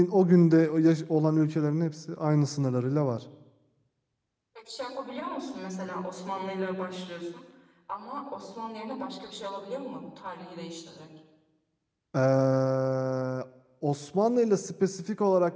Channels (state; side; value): identical; both; correlation 1.00